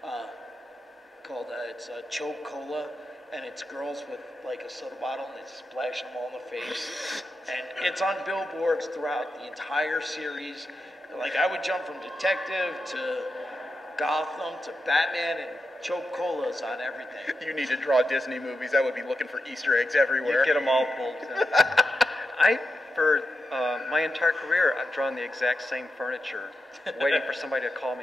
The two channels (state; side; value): normal; both; correlation 0.88